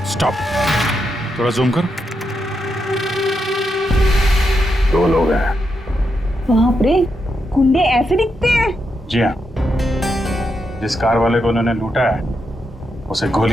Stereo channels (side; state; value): both; normal; correlation 0.83